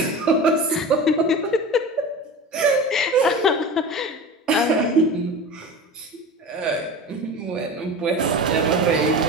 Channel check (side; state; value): both; normal; correlation 0.31